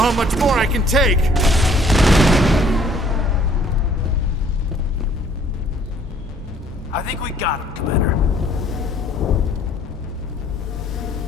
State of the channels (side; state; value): both; normal; correlation 0.59